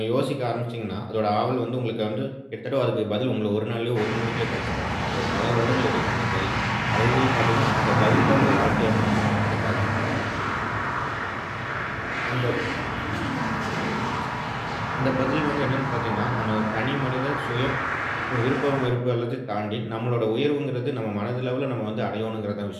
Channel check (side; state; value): both; identical; correlation 1.00